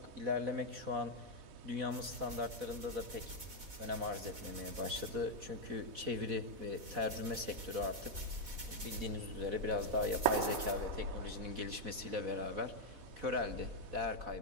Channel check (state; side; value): late; left; 4.1 ms